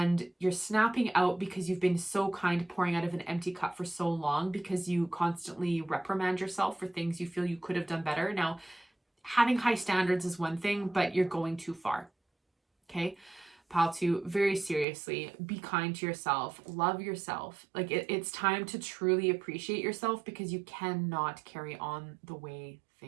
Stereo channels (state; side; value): drops out; left; at 14.9 s